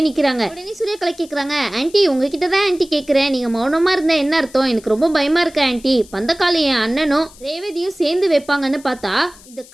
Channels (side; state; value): left; noise; hiss, 23 dB below the sound